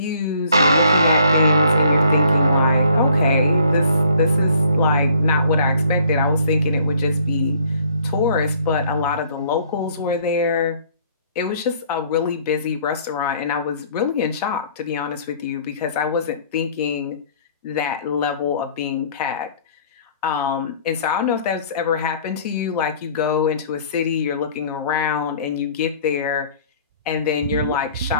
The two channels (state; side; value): inverted; both; correlation -0.57